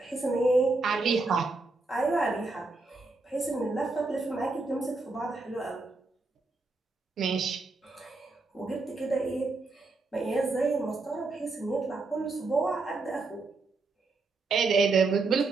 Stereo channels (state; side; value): quieter; left; 3.6 dB